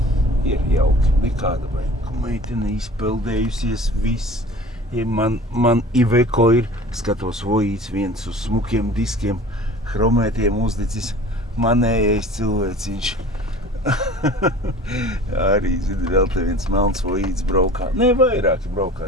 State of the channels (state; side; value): normal; both; correlation 0.43